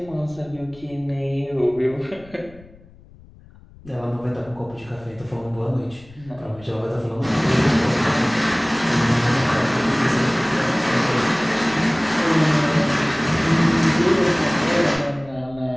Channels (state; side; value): noise; left; rumble, 23 dB below the sound